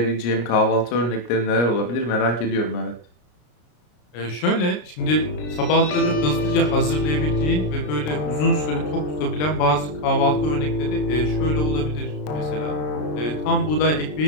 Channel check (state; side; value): late; right; 33 ms